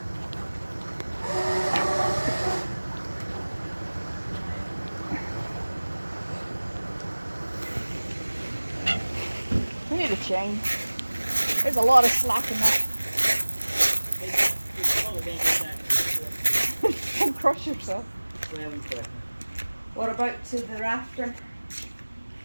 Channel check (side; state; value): both; inverted; correlation -1.00